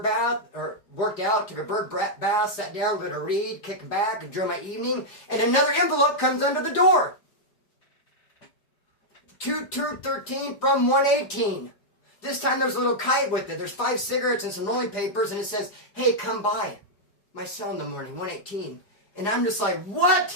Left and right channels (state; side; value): late; right; 4.9 ms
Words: bath, or worked out, took a bird bath, sat down, going to read, kick back, enjoy my evening, and another envelope comes under the door. 213 from 118. This time there's a little kite with it. There's 5 cigarettes and some rolling papers, and it says, hey, come by my cell in the morning, 118. And I'm just like,